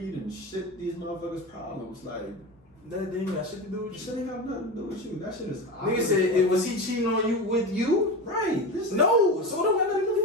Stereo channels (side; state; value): both; normal; correlation 0.24